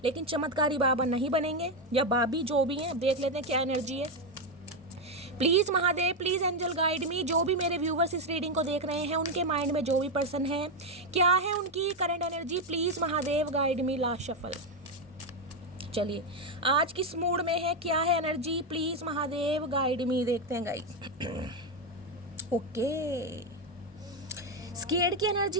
लेकिन चमत्कारी बाबा नहीं बनेंगे, या बाबी जो भी हैं। देख लेते हैं क्या एनर्जी है। Please Mahadev, please angel guide me. जो भी मेरे व्यूवर्स इस रीडिंग को देख रहे हैं, उनके माइंड में जो भी पर्सन है, क्या है उनकी current energy, please Mahadev guide me. Last shuffle. चलिए आज किस मूड में है, क्या है एनर्जी, प्लीज़ महादेव गाइड मी। देखते हैं गाइस। ओके, स्केर्ड की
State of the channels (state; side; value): normal; both; correlation 0.07